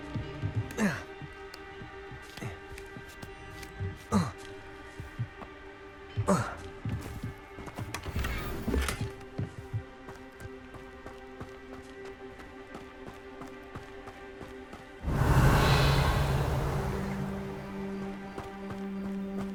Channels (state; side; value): identical; both; correlation 1.00